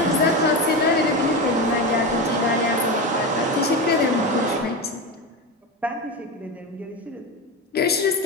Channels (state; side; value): normal; both; correlation 0.19